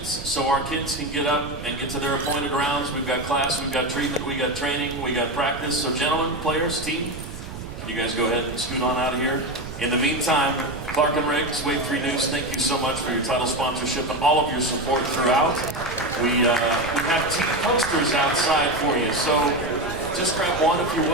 so our kids can get up and get to their appointed rounds. We've got class, we've got treatment, we got training, we got practice. So gentlemen, players, team, can you guys go ahead and scoot on out of here? In the meantime, Clark and Riggs, Wave 3 News, thank you so much for your title sponsorship and all of your support throughout. We have team posters outside for you, so just grab one if you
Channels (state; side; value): noise; right; rumble, 11 dB below the sound